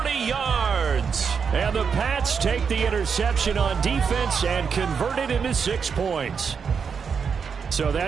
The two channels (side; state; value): left; quieter; 6.2 dB